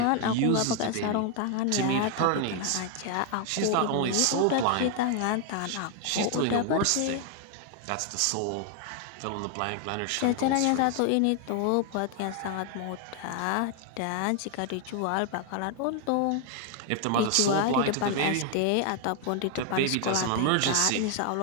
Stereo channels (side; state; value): both; different; correlation 0.00